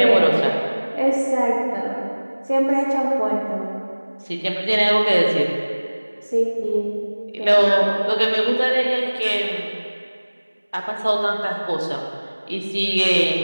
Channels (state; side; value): inverted; both; correlation -1.00